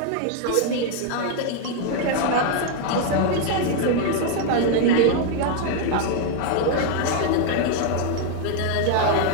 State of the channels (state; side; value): different; both; correlation 0.00